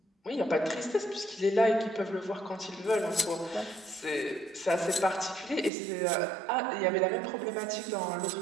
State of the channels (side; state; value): left; drops out; at 5.7 s